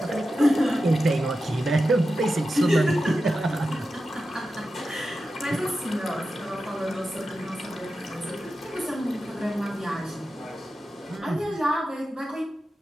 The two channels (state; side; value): normal; both; correlation 0.91